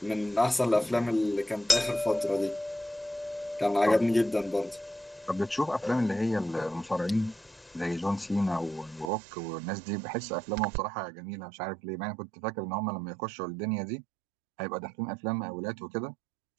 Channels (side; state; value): left; drops out; at 9.1 s